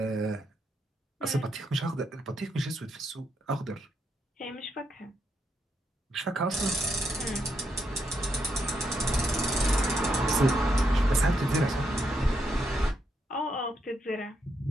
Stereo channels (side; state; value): both; normal; correlation 0.80